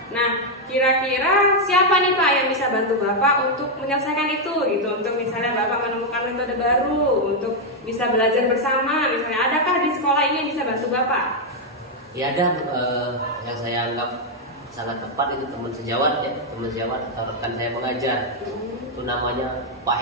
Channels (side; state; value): both; normal; correlation 0.00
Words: Nah, kira-kira siapa nih Pak yang bisa bantu Bapak untuk menyelesaikan itu gitu? Untuk misalnya Bapak menemukan metode baru untuk bisa belajar bersama, misalnya adakah di sekolah ini yang bisa bantu Bapak? Ya ada, yang saya anggap sangat tepat itu teman sejawat ya, teman sejawat atau rekan saya mengajar. Itu namanya Pak